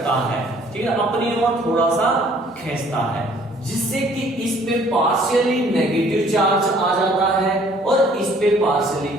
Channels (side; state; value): both; normal; correlation 0.58